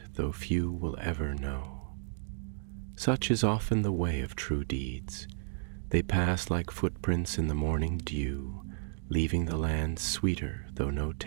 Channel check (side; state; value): left; silent; digital silence